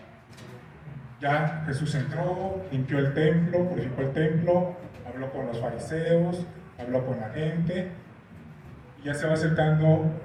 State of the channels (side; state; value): both; identical; correlation 1.00